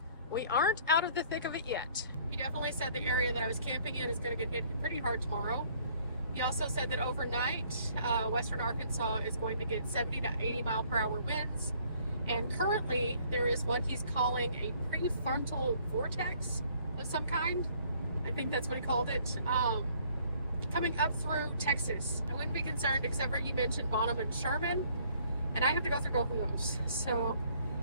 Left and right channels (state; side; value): inverted; both; correlation -0.60